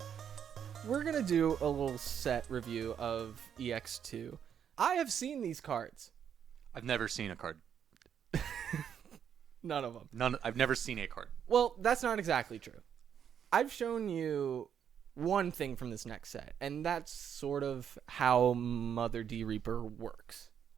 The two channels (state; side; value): quieter; left; 8.4 dB